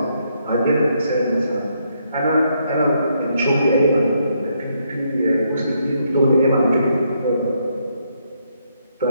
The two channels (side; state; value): both; inverted; correlation -0.75